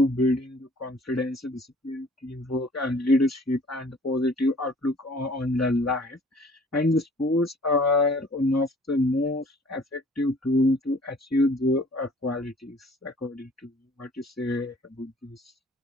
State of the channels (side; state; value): both; normal; correlation 0.53